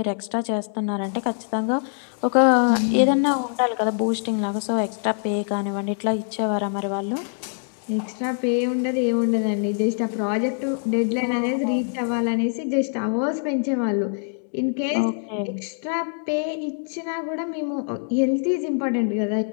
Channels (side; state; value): right; silent; digital silence